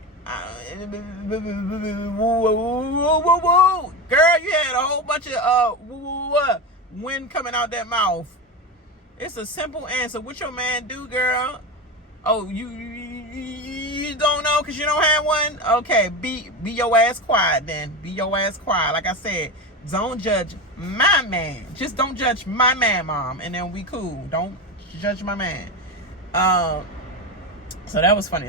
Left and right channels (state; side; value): normal; both; correlation 0.20